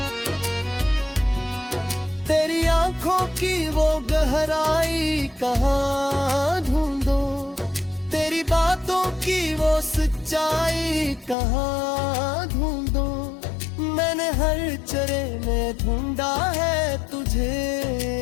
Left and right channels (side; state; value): right; drops out; at 11.4 s